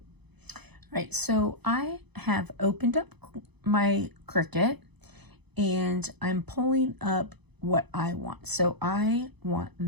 All right, so I have opened up my Cricut and I'm pulling up what I want. So I want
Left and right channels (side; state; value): left; late; 0.99 ms